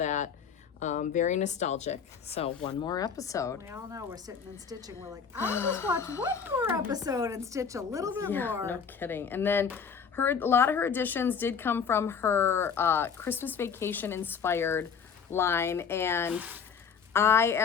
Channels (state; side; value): quieter; right; 6.5 dB